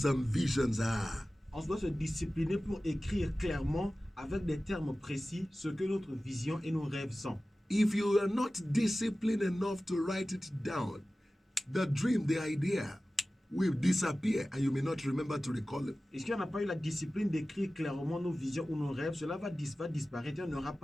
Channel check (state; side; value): normal; both; correlation 0.96